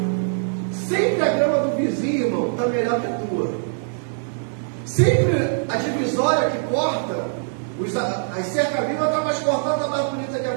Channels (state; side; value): silent; left; digital silence